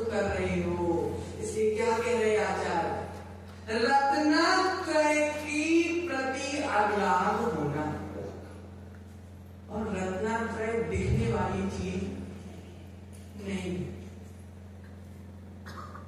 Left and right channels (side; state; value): both; identical; correlation 1.00